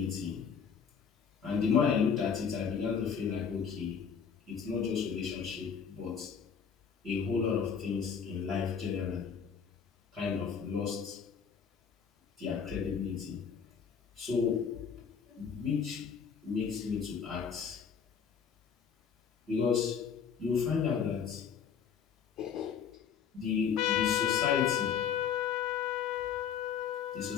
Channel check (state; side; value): quieter; right; 7.1 dB